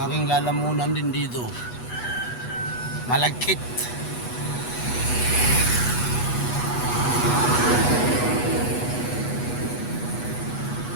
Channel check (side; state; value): right; late; 8.2 ms